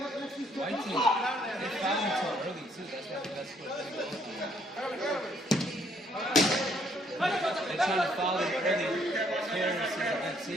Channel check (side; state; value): both; normal; correlation 0.67